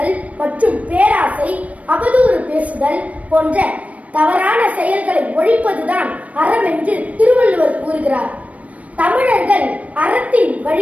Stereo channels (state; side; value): late; left; 0.067 ms